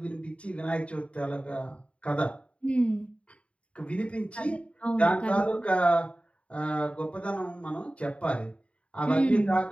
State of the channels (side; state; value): right; late; 0.062 ms